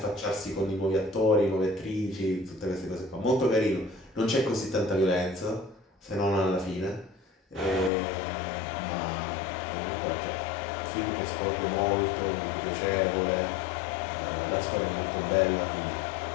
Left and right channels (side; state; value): right; drops out; at 7.9 s